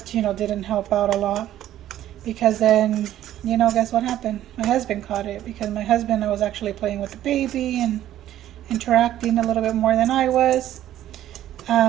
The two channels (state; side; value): quieter; left; 12.6 dB